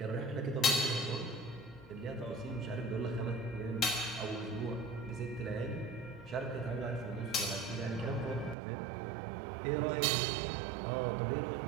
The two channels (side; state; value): left; drops out; at 8.6 s